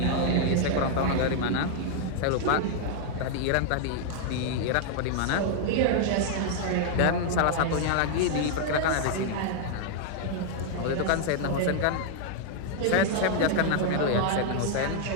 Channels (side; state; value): both; different; correlation 0.00